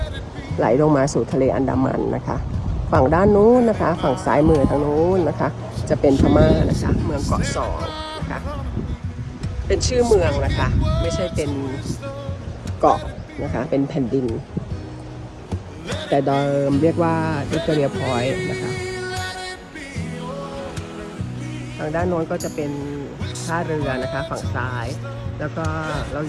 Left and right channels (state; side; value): identical; both; correlation 1.00